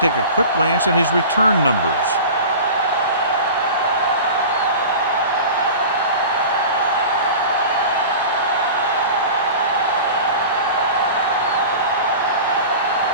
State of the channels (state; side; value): inverted; both; correlation -0.35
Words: a quick glance at his return numbers.